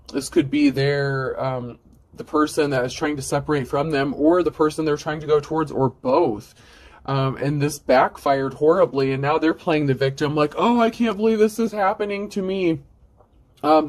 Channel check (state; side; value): identical; both; correlation 1.00